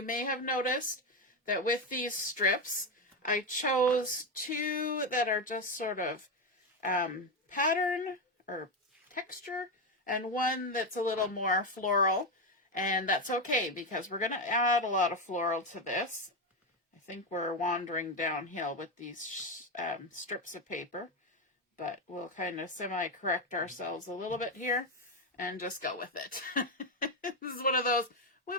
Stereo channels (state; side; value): normal; both; correlation 0.10